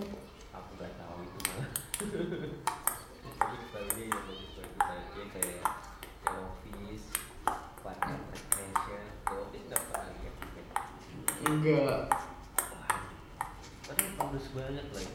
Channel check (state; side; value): identical; both; correlation 1.00